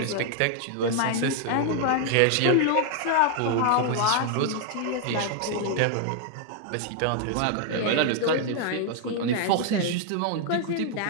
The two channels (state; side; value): different; both; correlation 0.00